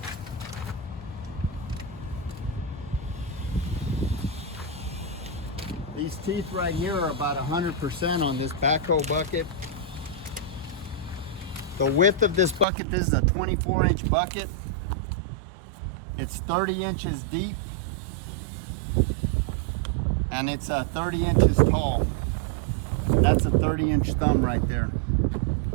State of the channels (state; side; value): drops out; left; at 12.7 s